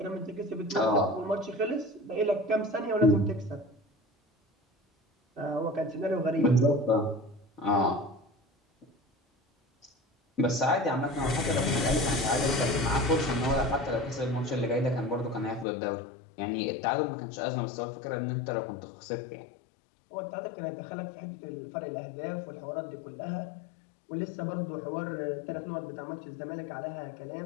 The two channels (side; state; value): right; drops out; at 15.7 s